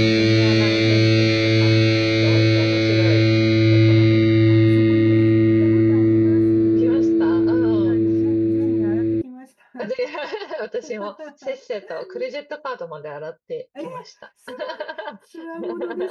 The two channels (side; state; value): both; identical; correlation 1.00